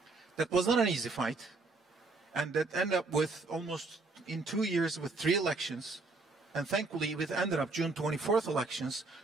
That was not an easy fight, and that ended up with almost in 2 years with 3 elections, and thankfully it ended up June 24th elections,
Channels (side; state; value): left; quieter; 3.6 dB